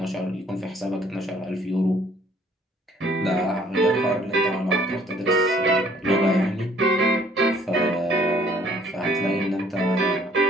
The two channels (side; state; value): both; normal; correlation 0.59